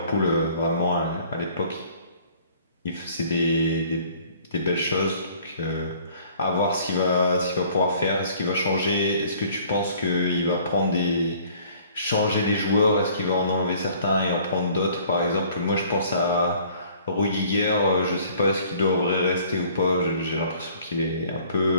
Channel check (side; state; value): both; inverted; correlation -0.55